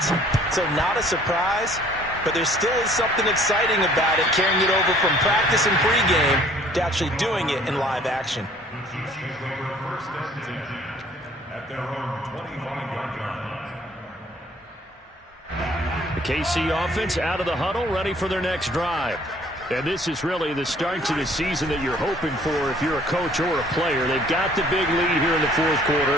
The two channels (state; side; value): normal; both; correlation 0.57